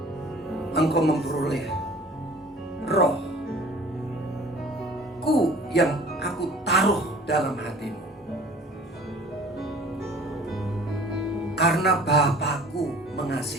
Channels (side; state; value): both; normal; correlation 0.47